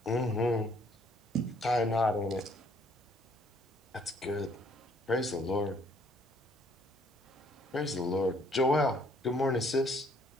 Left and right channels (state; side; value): normal; both; correlation 0.63